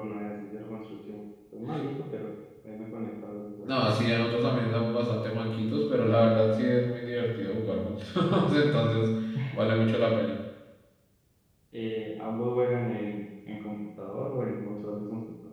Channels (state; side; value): identical; both; correlation 1.00